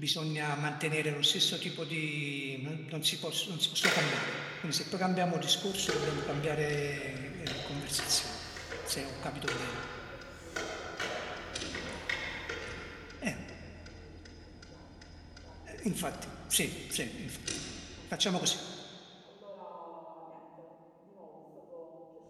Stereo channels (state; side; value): identical; both; correlation 1.00